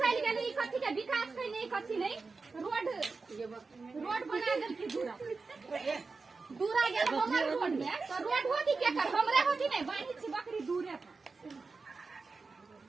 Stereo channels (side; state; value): left; quieter; 4.2 dB